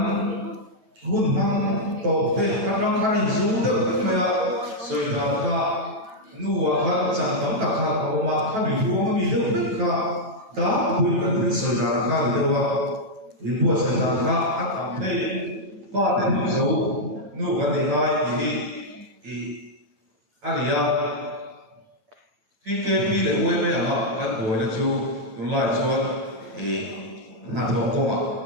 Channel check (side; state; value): left; late; 9.1 ms